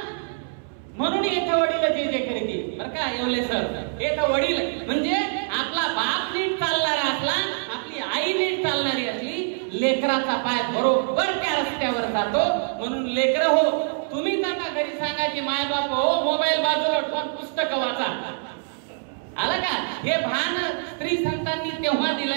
म्हणून येथे वडील जे करीती. बरं का येवले सर, येथे वडील म्हणजे आपला बाप नीट चालणारा असला, आपली आई नीट चालणारी असली, लेकराचा पाय बरोबर त्या रस्त्यावर जातो. म्हणून लेकर हो, तुम्ही त्यांना घरी सांगा की माय बाप हो मोबाईल बाजूला ठेवून पुस्तक वाचा. आलं का? हे भान स्त्री संतांनी तेव्हा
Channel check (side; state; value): left; silent; 62 dB below the other